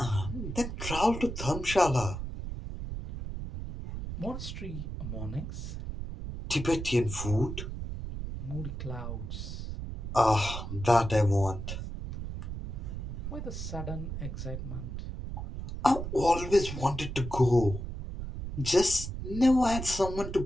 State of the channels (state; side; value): noise; right; rumble, 6 dB below the sound